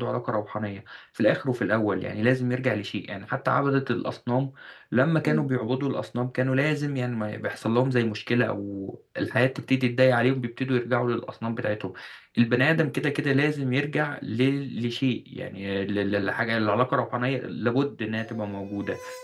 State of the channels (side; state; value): both; identical; correlation 1.00